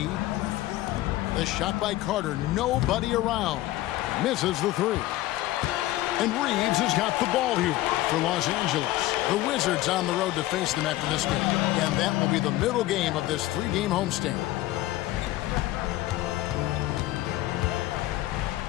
The shot by Carter. Nobody around. Misses the 3. And Reeves has got the ball here for Los Angeles. The Wizards on the road to face them after this game. And that will be the middle game of this 3-game homestand.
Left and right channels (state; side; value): quieter; right; 16.3 dB